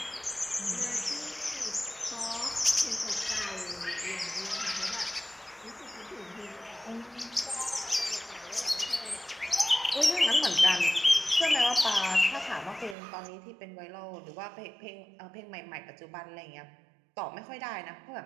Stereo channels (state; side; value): drops out; left; at 13.0 s